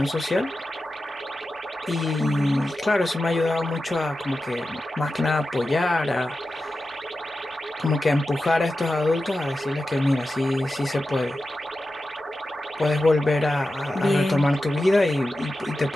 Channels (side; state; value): both; normal; correlation 0.92